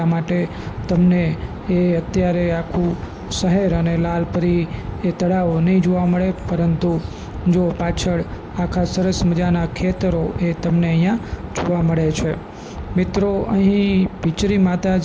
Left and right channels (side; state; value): both; identical; correlation 1.00